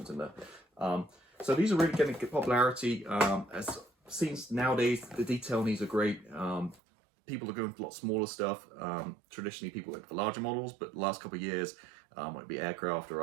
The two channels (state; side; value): drops out; left; at 6.8 s